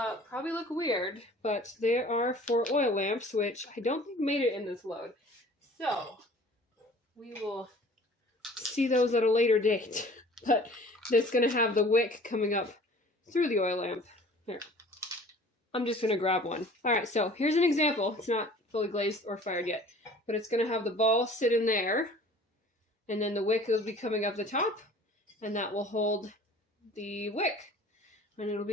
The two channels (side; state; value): both; normal; correlation 0.48